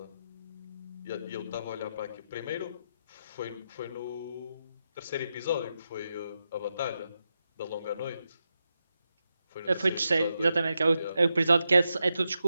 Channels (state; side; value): inverted; both; correlation -0.87